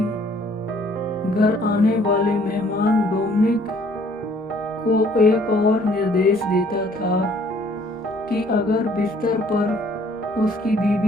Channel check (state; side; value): normal; both; correlation 0.60